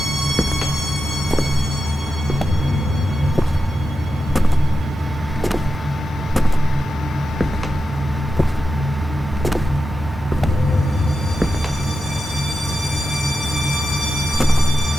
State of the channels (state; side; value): normal; both; correlation 0.90